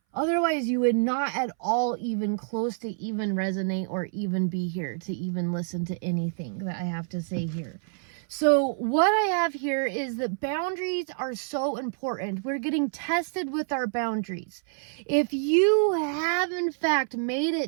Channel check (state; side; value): silent; left; 60 dB below the other